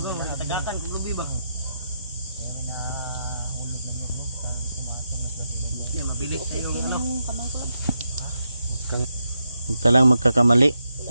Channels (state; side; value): inverted; both; correlation -0.83